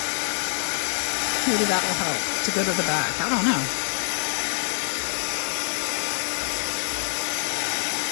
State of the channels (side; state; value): right; silent; 62 dB below the other